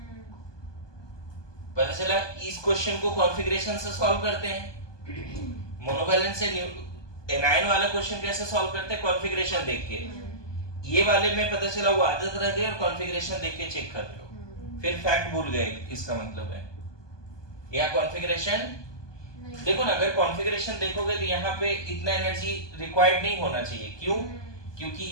पता चला इस क्वेश्चन को कॉन्फ़िगरेशन से सॉल्व करते हैं, मोनोवैलेंट से एनायन वाला क्वेश्चन कैसे सॉल्व करते हैं, कॉन्फ़िगरेशन देख के। ये वाले में पता चला वो आदत रह गई और कॉन्फ़िगरेशन देख के चेक कर लो, फिर फैक्ट भूल गए, इसका मतलब है यहाँ कॉन्फ़िगरेशन देखो ना। अगर कॉन्फ़िगरेशन देखोगे तो यहाँ पे इतना एनर्जी रिक्वायर्ड नहीं होना चाहिए। क्यों? क्योंकि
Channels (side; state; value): right; late; 1.2 ms